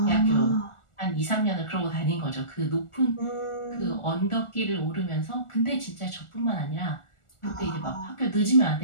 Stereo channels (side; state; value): right; late; 1.4 ms